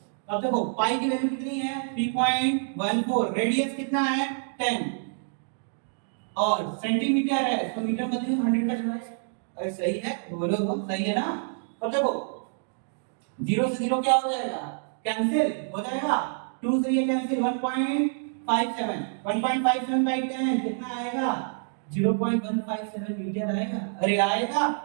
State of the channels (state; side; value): silent; left; digital silence